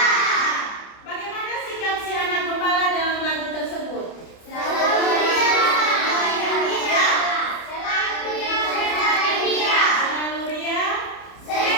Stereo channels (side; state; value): right; late; 30 ms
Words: Bagaimana sikap si anak gembala dalam lagu tersebut? Selalu ria.